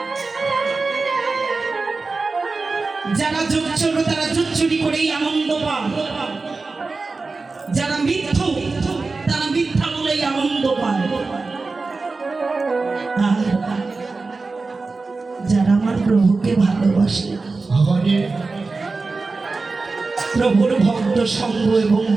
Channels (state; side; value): quieter; left; 3.9 dB